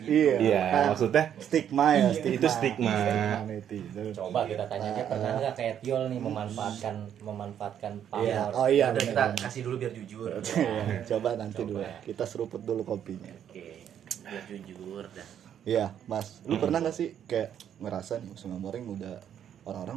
Iya, maksudnya stigma ya, itu stigma. netizen. Coba kita tanya aja pernah nggak kayak Tiol nih memanfaatkan Iya. pamor. Oh iya, Udah kita benar. kasih dulu biar jujur. Iya, coba nanti dulu. Kita seruput dulu kopinya. Oke, biar jujur dah. Iya, Mas. Lu pernah gak sih kayak ngerasa nih Smell Morning udah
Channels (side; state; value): left; quieter; 9.5 dB